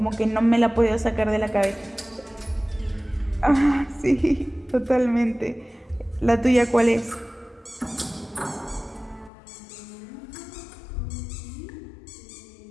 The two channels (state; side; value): drops out; right; at 9.3 s